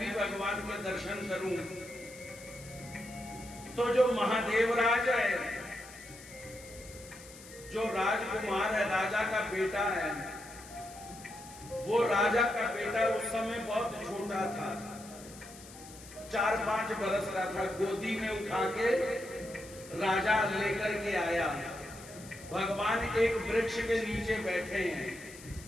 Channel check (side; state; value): left; noise; hiss, 18 dB below the sound